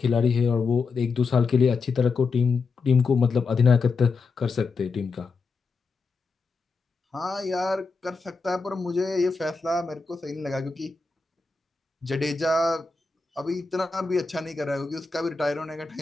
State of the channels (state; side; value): quieter; right; 4.4 dB